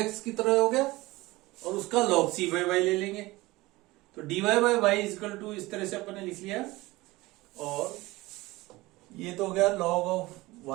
की तरह हो गया और उसका log c बाई वाई ले लेंगे, तो dy by y equal to इस तरह से अपन ने लिख लिया, और ये तो हो गया log of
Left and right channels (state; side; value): quieter; left; 20.2 dB